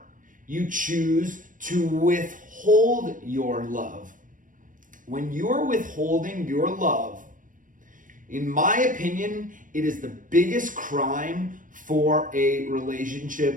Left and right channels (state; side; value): late; left; 0.38 ms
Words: you choose to withhold your love. When you're withholding your love, in my opinion, it is the biggest crime for a